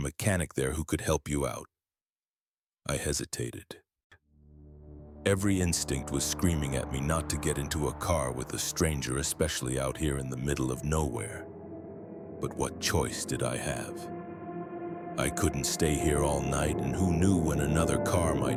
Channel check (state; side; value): identical; both; correlation 1.00